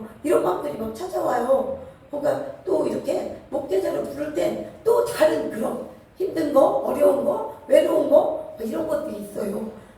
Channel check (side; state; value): both; identical; correlation 1.00